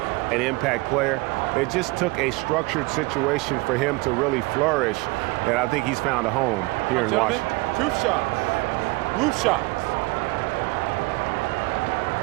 an impact player. It just took a structured situation for him to really flourish, and I think he's found a home here in Washington. 2 shots. Roof shots.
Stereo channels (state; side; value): quieter; left; 24.3 dB